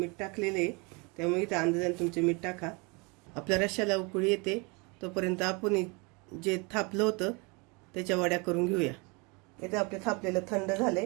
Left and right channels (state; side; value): quieter; left; 29.5 dB